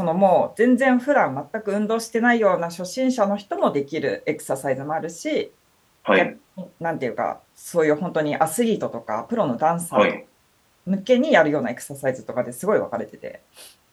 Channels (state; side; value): identical; both; correlation 1.00